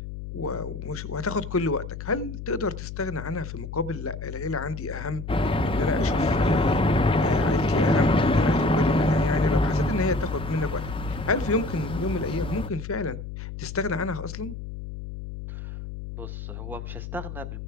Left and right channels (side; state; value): left; noise; hum, 9 dB below the sound